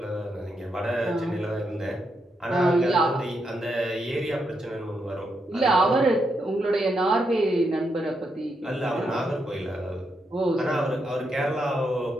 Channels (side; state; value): both; normal; correlation 0.81